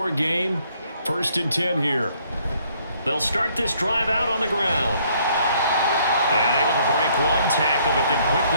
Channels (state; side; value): inverted; both; correlation -0.65